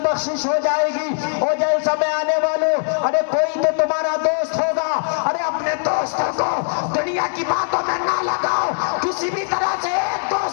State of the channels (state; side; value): silent; right; digital silence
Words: بخشش ہو جائے گی۔ اور جلسہ میں آنے والوں، ارے کوئی تو تمہارا دوست ہوگا، ارے اپنے دوستوں کو دنیا کی باتوں میں نہ لگاؤ، کسی بھی طرح سے ایک